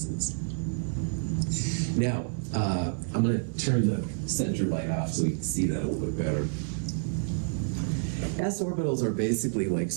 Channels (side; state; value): left; silent; 57 dB below the other